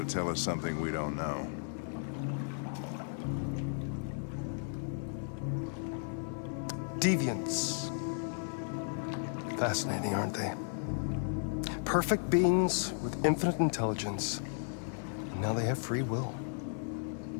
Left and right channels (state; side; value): silent; right; digital silence